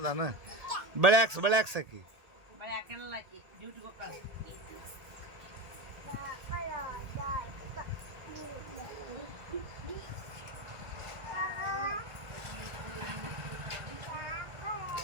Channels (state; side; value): late; left; 1.8 ms